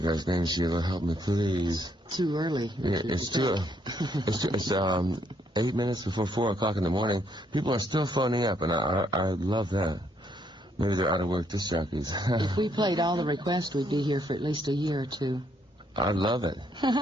guy's name. Sheila, help me, please. Too early. Yeah, it's 8 minutes before 4 o'clock in the morning. People are still phoning up, and I love that. Maybe they're out of work disc jockeys. If we played all the requests, we'd be here for at least a year or two. I love it.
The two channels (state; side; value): normal; both; correlation 0.72